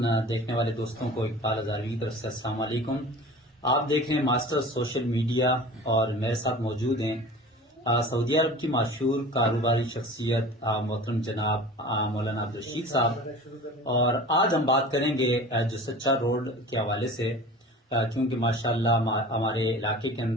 دیکھنے والے دوستوں کو اقبال ہزاروی کی طرف سے السلام علیکم۔ آپ دیکھ رہے ہیں ماسٹر سوشل میڈیا اور میرے ساتھ موجود ہیں سعودی عرب کی مشہور کاروباری شخصیت محترم جناب مولانا عبدالرشید صاحب، اور آج ہم بات کریں گے جو سچا روڈ کے حوالے سے، کیونکہ ماشاءاللہ ہمارے علاقے کے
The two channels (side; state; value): both; normal; correlation 0.39